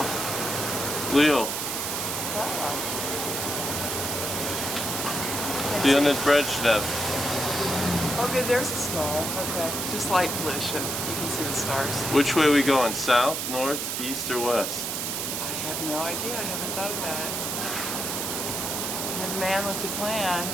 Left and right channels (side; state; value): right; noise; hiss, 2 dB below the sound